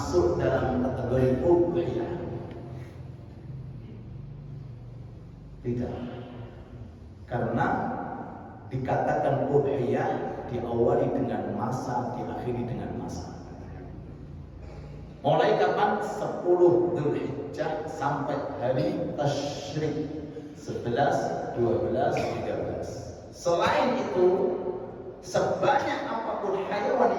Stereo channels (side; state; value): both; identical; correlation 1.00